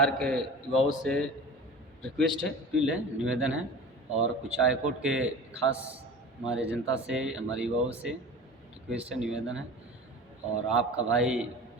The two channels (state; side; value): normal; both; correlation 0.36